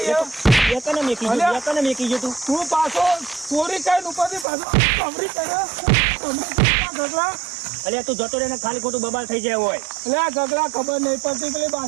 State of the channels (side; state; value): left; drops out; at 4.5 s